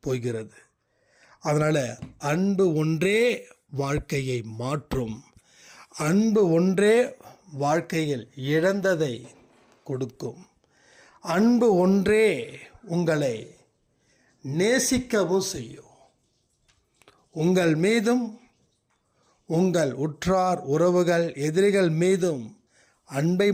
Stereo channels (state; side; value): identical; both; correlation 1.00